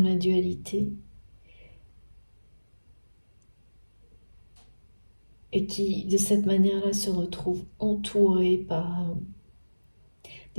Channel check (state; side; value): inverted; both; correlation -1.00